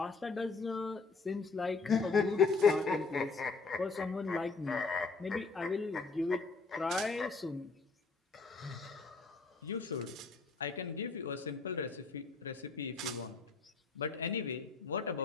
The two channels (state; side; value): quieter; right; 4.2 dB